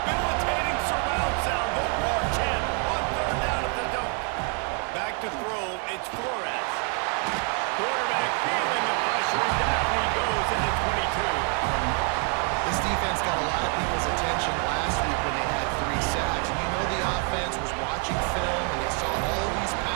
surround sound. The war chant on third down at the dome. Back to throw, it's Flores. Quarterback feeling the pressure, and down he goes into 22. This defense got a lot of people's attention last week when they had 3 sacks. And you know the offense was watching film, and they saw all these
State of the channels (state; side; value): quieter; left; 40.0 dB